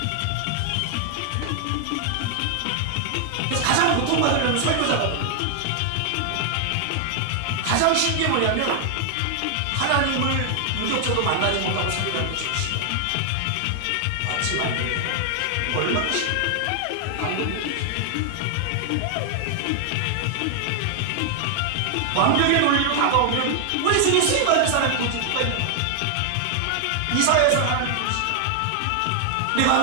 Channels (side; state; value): both; different; correlation 0.00